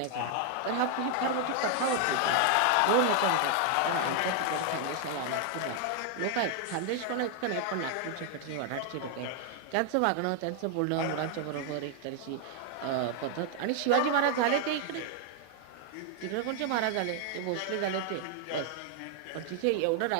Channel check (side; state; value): both; different; correlation 0.00